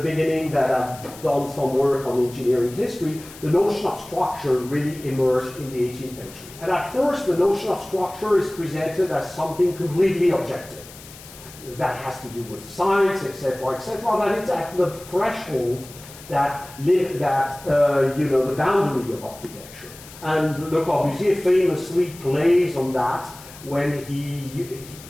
that I've done some work on engineering history. The notion of structure really emerged in the 18th century. And at first, the notion of structure is presented as something completely objective. That has to do with science, etc., etc. That it's at the threshold that the boundary of architecture. And Le Corbusier famously plays on that when he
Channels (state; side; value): noise; left; hiss, 18 dB below the sound